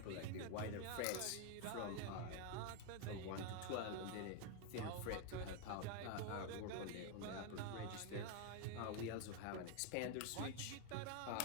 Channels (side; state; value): both; different; correlation 0.01